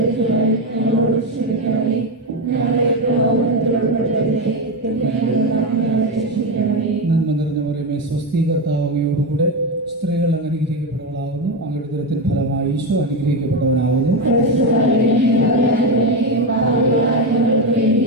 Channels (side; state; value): both; normal; correlation 0.11